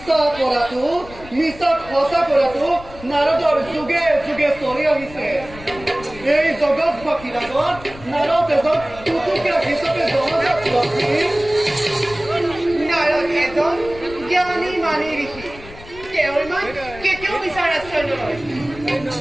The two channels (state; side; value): noise; left; rumble, 17 dB below the sound